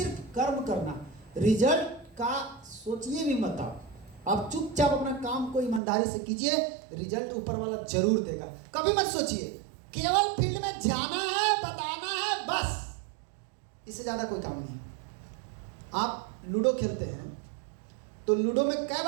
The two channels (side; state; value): left; drops out; at 5.8 s